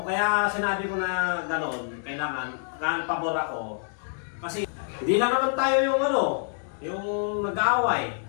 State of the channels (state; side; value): silent; right; digital silence